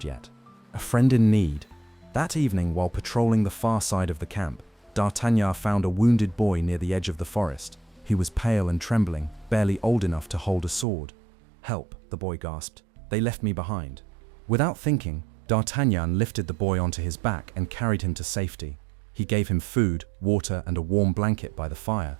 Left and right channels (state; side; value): drops out; left; at 10.9 s